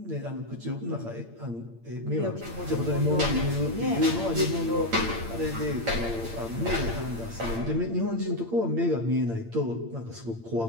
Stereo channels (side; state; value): left; late; 8.8 ms